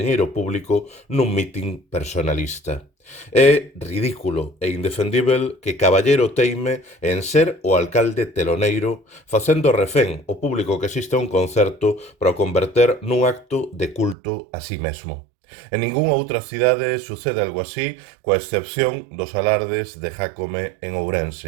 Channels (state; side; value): drops out; left; at 14.2 s